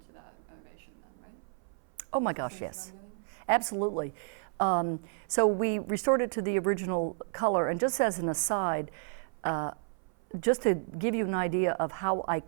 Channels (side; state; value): left; silent; 57 dB below the other